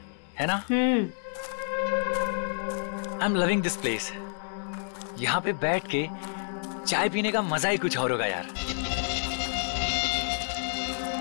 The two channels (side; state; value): right; silent; digital silence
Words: है ना? I am loving this place. यहाँ पे बैठ के चाय पीने का मजा ही कुछ और होगा यार।